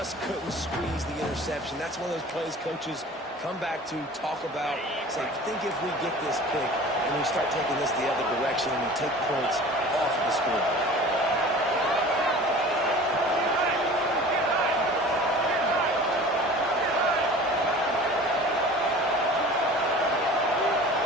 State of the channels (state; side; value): normal; both; correlation 0.41